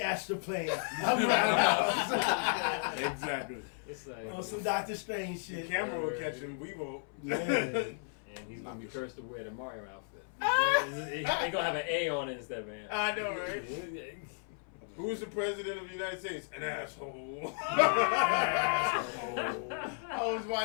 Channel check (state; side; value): silent; right; 55 dB below the other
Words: astral plane. I'm Roundhouse. Exactly. It's like On some Doctor Strange The shit. camera will catch him. We won't. Yeah. and he's gonna be cursed to wear the Mario outfit. He's gonna have an A on it instead of an. I know, right? Who's the president of the United States? An asshole. I was